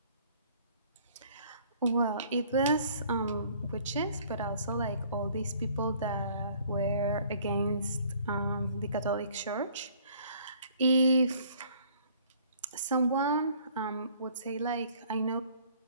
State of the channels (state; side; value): inverted; both; correlation -0.57